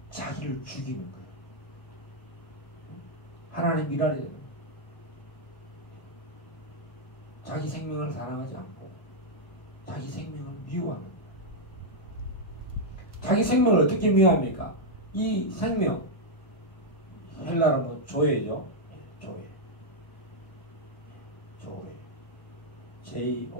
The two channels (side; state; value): right; late; 1.8 ms